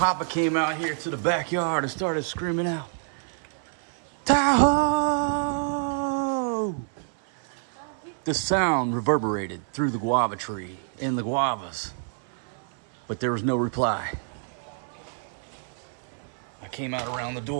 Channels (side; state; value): left; silent; 60 dB below the other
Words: came out here to the backyard and started screaming out, Tahoe! The sound reverberated through the guava tree and the guavas, but there was no reply. I came out around the